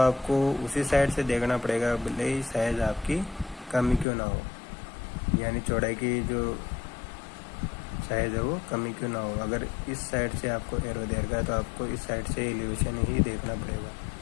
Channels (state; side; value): drops out; right; at 4.0 s